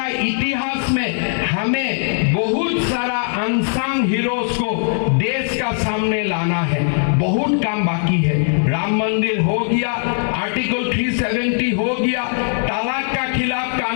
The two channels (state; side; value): silent; right; digital silence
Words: इतिहास में हमें बहुत सारा अनसंग हीरोज को देश का सामने लाना है। बहुत काम बाकी है। राम मंदिर हो गया, आर्टिकल 370 हो गया, तलाक का खिलाफ